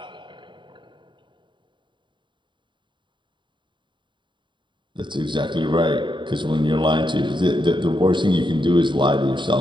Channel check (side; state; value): left; late; 0.23 ms